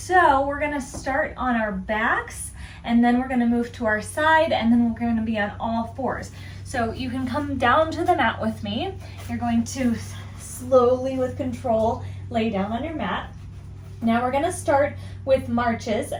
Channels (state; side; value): identical; both; correlation 1.00